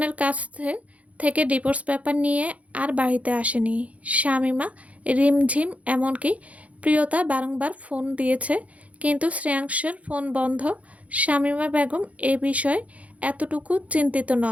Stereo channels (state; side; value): late; left; 0.067 ms